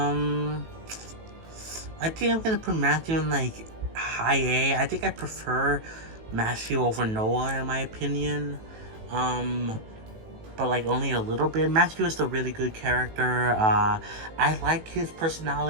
I think I'm gonna put Matthew in like high A. I think I prefer Matthew over Noah in my opinion. Um, but like only a little bit. Matthew is a really good character. I like his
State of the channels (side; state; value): left; late; 18 ms